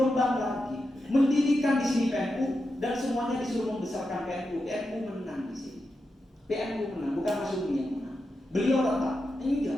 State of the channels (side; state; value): both; normal; correlation 0.88